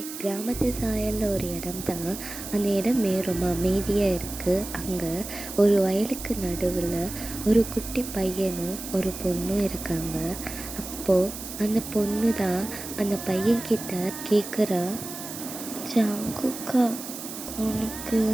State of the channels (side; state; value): right; noise; hiss, 10 dB below the sound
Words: கிராமத்து சாயலில் ஒரு இடம் தான். அந்த இடமே ரொம்ப அமைதியாக இருக்குது. அங்கே ஒரு வயலுக்கு நடுவில் ஒரு குட்டி பையனும் ஒரு பொண்ணும் இருக்காங்க. அப்போது அந்த பொண்ணு தான் அந்த பையன்கிட்ட கேட்குறா, ஜாங்குக்கா, உனக்கு